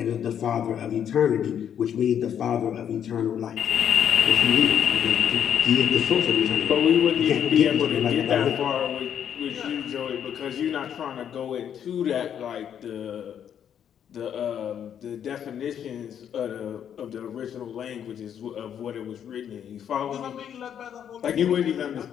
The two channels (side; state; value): right; quieter; 9.0 dB